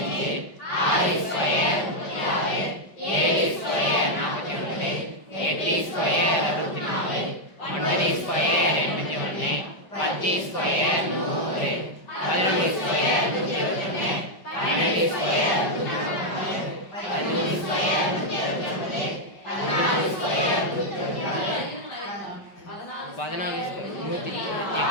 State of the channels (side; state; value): right; late; 5.3 ms